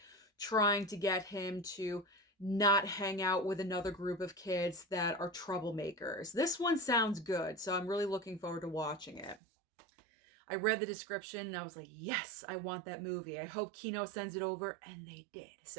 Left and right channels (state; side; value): drops out; left; at 9.4 s